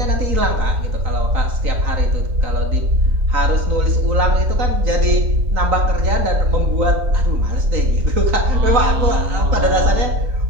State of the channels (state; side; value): late; left; 3.9 ms